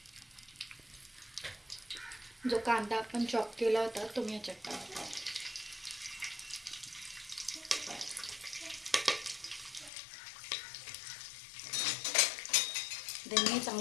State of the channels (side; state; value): right; drops out; at 9.9 s